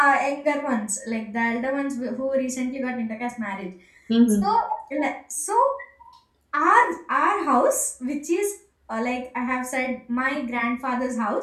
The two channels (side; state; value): both; identical; correlation 1.00